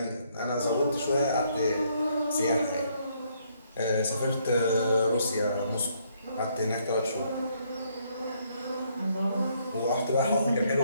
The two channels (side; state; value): both; inverted; correlation -0.70